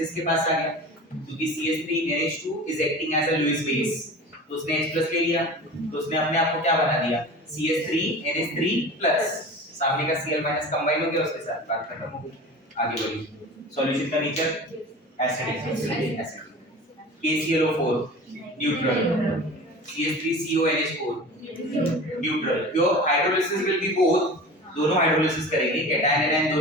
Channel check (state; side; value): normal; both; correlation 0.36